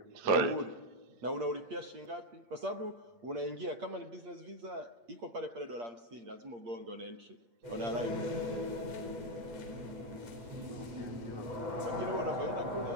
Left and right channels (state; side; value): late; left; 8.6 ms